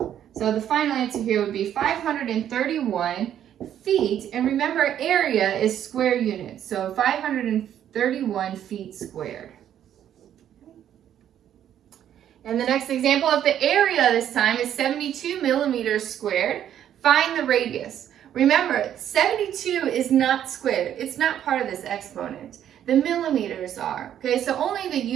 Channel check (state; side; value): quieter; left; 10.4 dB